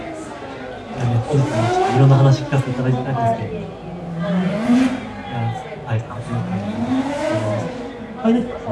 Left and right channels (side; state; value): both; identical; correlation 1.00